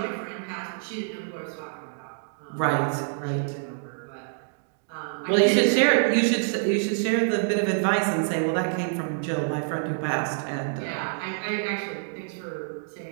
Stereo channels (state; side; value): silent; left; digital silence